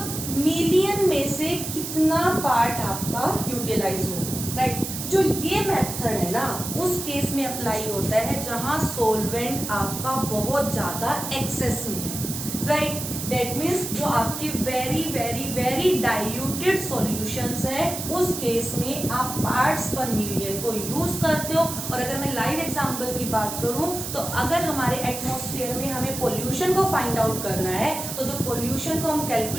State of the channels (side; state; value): right; noise; hiss, 6 dB below the sound